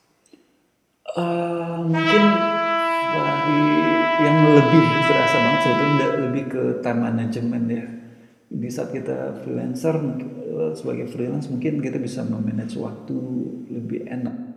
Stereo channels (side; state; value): both; identical; correlation 1.00